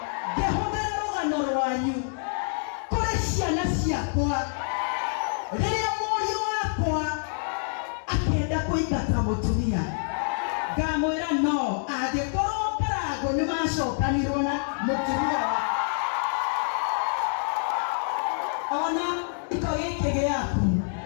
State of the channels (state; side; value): silent; right; digital silence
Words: ngĩhũthĩra rũgano rwanyu kũrĩ ciana ciakwa rĩrĩa mũriũ wakwa akenda kũingata mũtumia ngamwĩra no angĩkorwo karango nĩ macokanirwo na mũtumia ona iko gĩkĩ gĩaku